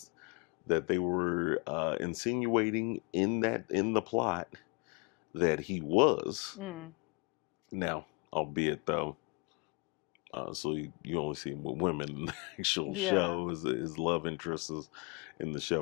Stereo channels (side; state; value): right; quieter; 31.1 dB